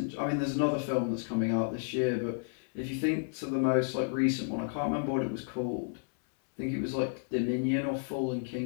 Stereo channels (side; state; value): right; silent; 57 dB below the other